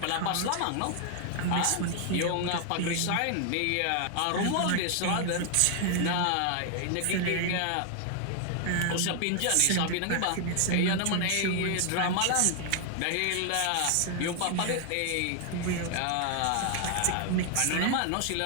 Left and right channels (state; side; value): different; both; correlation 0.00